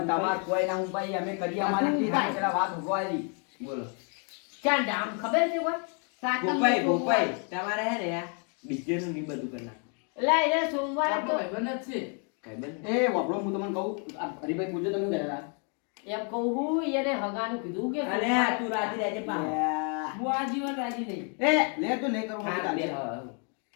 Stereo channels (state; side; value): quieter; right; 39.8 dB